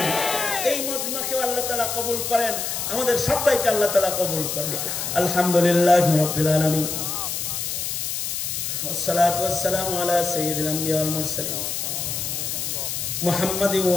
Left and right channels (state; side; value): noise; left; hiss, 3 dB below the sound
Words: এই মজমাকে আল্লাহ তাআলা কবুল করেন, আমাদের সবাইকে আল্লাহ তাআলা কবুল করেন। আলহামদুলিল্লাহি রাব্বিল আলামিন, والصلاة والسلام على سيد الأنبياء والمرسلين محمد